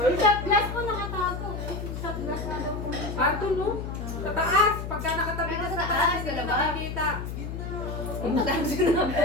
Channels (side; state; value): left; noise; hum, 6 dB below the sound